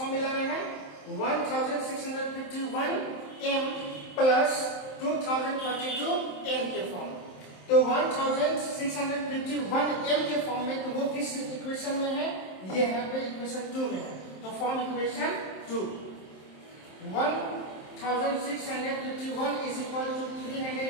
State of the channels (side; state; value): right; late; 27 ms